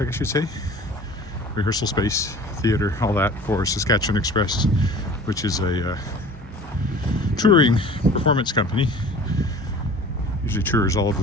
guess you'd say. Rehearsal space, theater, all that for Saskatchewan Express, which is a touring performance company. Usually tours all over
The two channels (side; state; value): both; normal; correlation 0.44